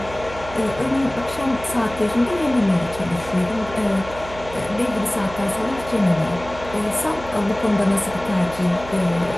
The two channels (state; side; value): noise; right; hum, 14 dB below the sound